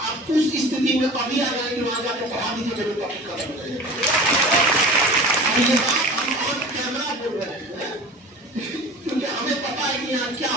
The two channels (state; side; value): normal; both; correlation 0.39